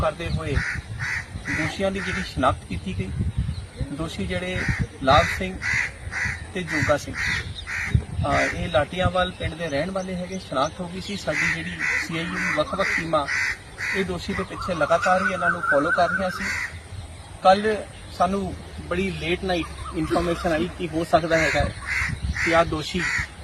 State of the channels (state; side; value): identical; both; correlation 1.00